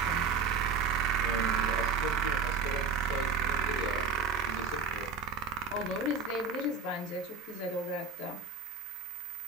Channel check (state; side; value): quieter; left; 5.2 dB